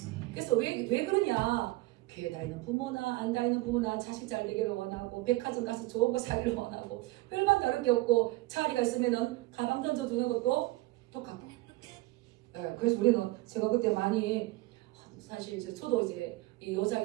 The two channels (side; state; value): left; quieter; 19.8 dB